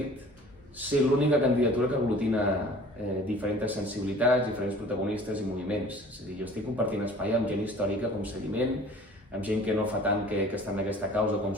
ser l'única candidatura que aglutina diferents sensibilitats, diferents protagonistes i moviments. És a dir, jo estic compartint espai amb gent històrica com Seguiment, amb gent que no fa tant que està en aquesta causa com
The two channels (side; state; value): both; normal; correlation 0.47